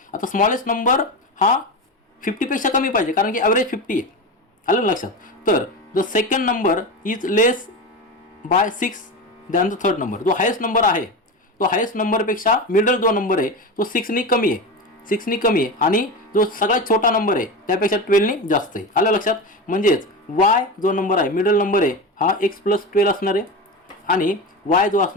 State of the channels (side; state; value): both; normal; correlation 0.22